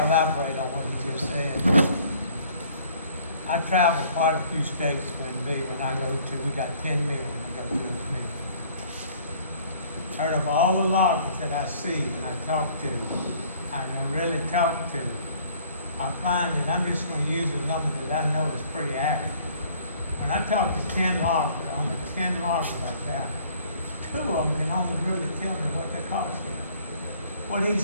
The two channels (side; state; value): both; inverted; correlation -0.57